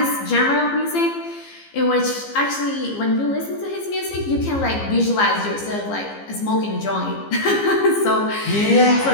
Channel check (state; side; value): late; right; 15 ms